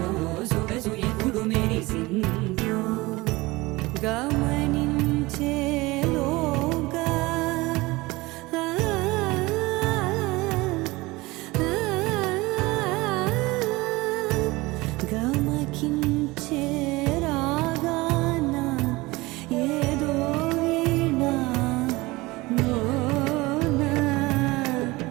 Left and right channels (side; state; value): left; quieter; 21.6 dB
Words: సొగసు ఎప్పుడు మెరిసిందో గమనించేలోగా గమకించే రాగాన ఏదో వీణ మోన